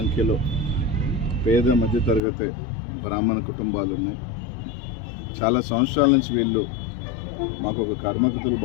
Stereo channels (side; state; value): right; drops out; at 2.2 s